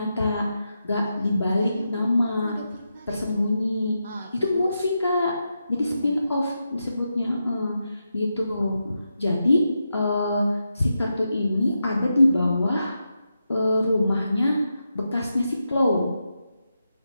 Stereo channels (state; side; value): inverted; both; correlation -0.87